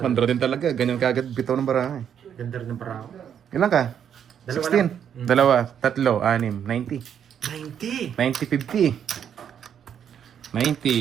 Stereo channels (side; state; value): left; quieter; 8.7 dB